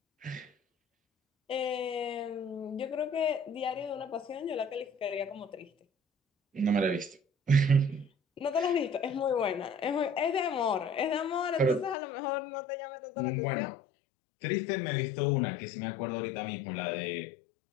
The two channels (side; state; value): right; drops out; at 12.0 s